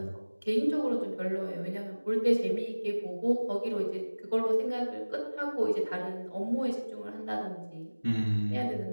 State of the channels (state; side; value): inverted; both; correlation -1.00